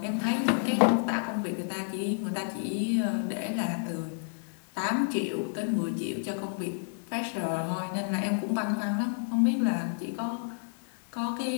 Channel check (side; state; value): right; silent; digital silence